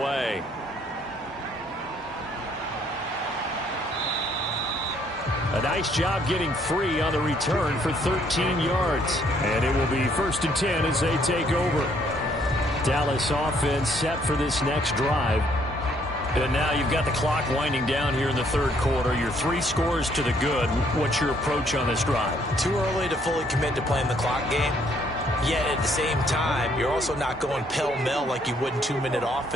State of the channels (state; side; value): normal; both; correlation 0.66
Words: A nice job getting free on the return for 13 yards. And it will be 1st and 10 as they take over. Dallas offense set for this next drive. And now you've got the clock winding down here in the 3rd quarter. You're 3 scores to the good. What's your approach on this drive? Too early to fully commit to playing the clock game. Yet at the same time, you're also not going pell-mell like you would in 2-minute